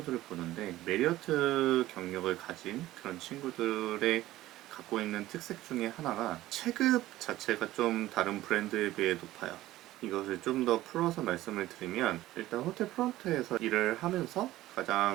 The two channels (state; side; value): quieter; left; 15.8 dB